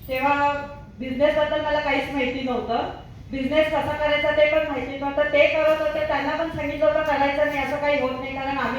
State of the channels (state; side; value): identical; both; correlation 1.00